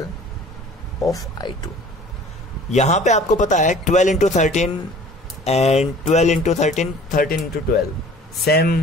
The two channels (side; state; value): both; normal; correlation 0.48